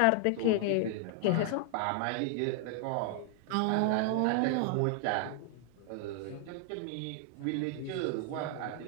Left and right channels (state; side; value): different; both; correlation 0.00